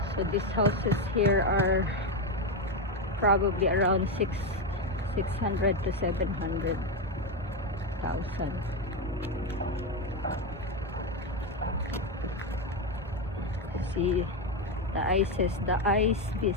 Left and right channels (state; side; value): normal; both; correlation 0.10